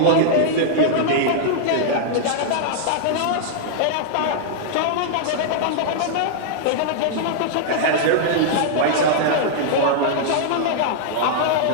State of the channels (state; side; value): different; both; correlation -0.01